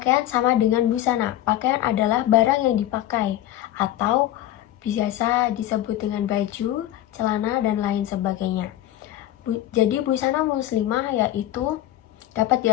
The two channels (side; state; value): right; quieter; 13.3 dB